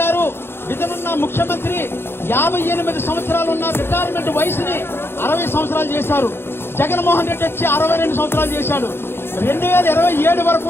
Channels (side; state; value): right; late; 0.11 ms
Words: గారు ఇతనున్న ముఖ్యమంత్రి 58 సంవత్సరాలు ఉన్న రిటైర్మెంట్ వయసుని 60 సంవత్సరాలు చేశారు. జగన్మోహన్ రెడ్డి వచ్చి 62 సంవత్సరాలు చేశాడు. 2027 వరకు